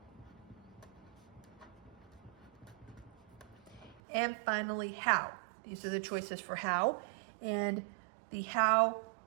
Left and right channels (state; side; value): drops out; left; at 4.0 s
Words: And finally, how. These are the choices for how. And the how